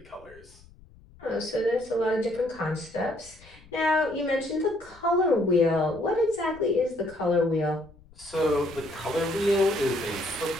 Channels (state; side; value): noise; left; rumble, 24 dB below the sound